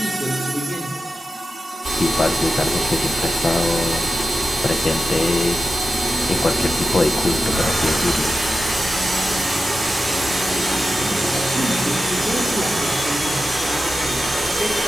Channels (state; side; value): normal; both; correlation 0.92